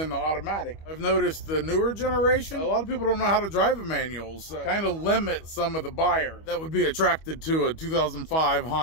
the automatic. I've noticed the newer generation, a lot of people don't know how to drive a manual, so kind of limit some of the buyers that would be attracted to a 2005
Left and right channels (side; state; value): right; late; 25 ms